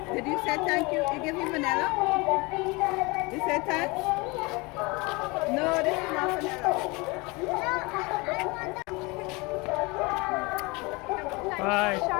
Did you say thank you? You give me vanilla? You said thanks? No, this is not vanilla. Bye.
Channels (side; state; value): right; quieter; 25.8 dB